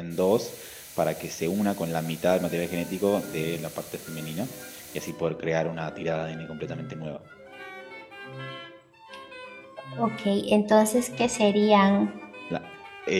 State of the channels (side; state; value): both; identical; correlation 1.00